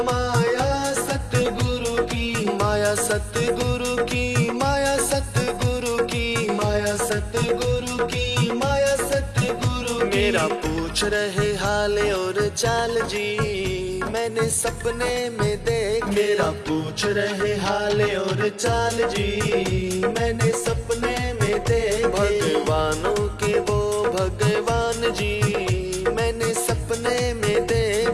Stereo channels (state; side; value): identical; both; correlation 1.00